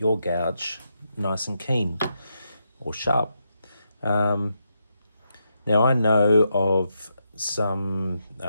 gouge nice and keen or sharp. Now I know of some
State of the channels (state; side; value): inverted; both; correlation -0.83